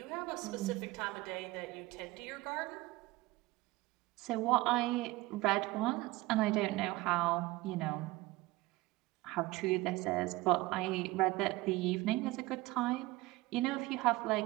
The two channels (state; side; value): quieter; left; 19.9 dB